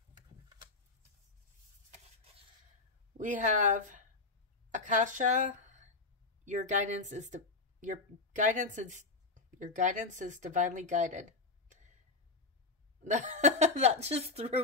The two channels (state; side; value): quieter; right; 3.6 dB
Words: We have Akasha. Your guidance is divinely guided. That just threw